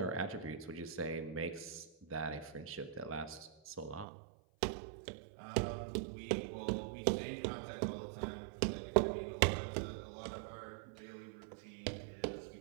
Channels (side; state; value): left; drops out; at 4.0 s